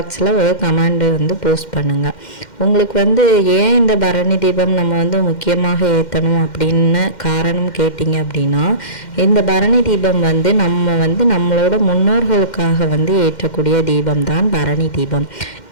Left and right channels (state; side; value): late; right; 2.1 ms